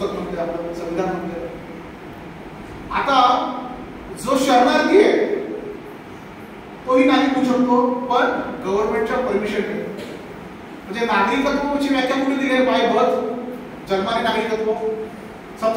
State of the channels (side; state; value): both; identical; correlation 1.00